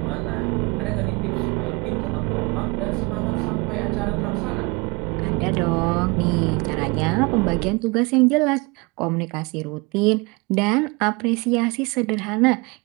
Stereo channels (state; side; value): quieter; left; 27.1 dB